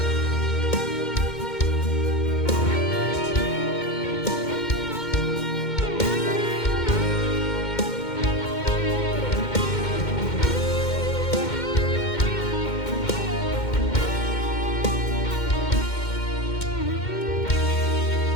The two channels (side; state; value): right; late; 2.1 ms